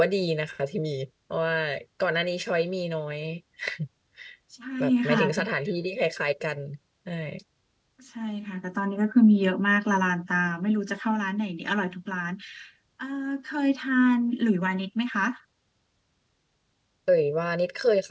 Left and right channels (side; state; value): both; identical; correlation 1.00